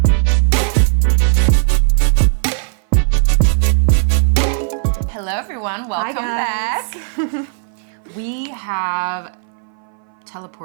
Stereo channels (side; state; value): left; silent; 62 dB below the other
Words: Hello everyone, welcome back. We have